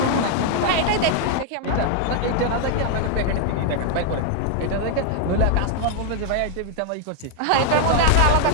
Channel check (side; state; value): both; different; correlation 0.00